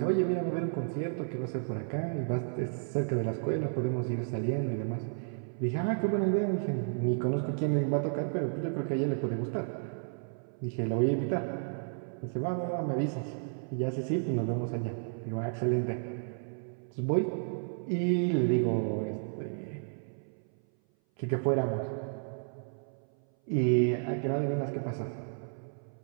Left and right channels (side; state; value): left; silent; 56 dB below the other